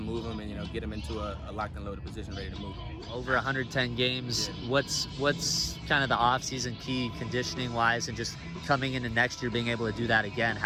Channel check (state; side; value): identical; both; correlation 1.00